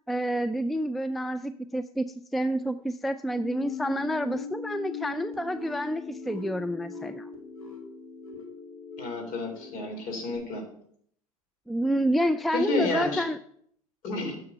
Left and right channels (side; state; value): both; normal; correlation 0.79